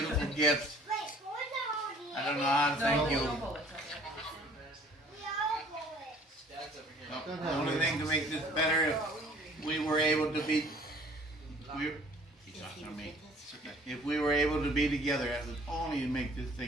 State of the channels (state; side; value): normal; both; correlation 0.54